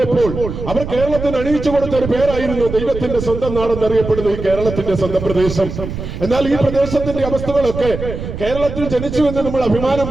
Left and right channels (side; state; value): right; noise; rumble, 7 dB below the sound